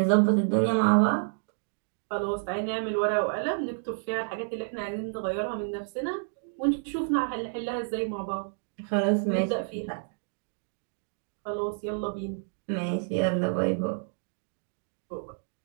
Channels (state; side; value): silent; left; digital silence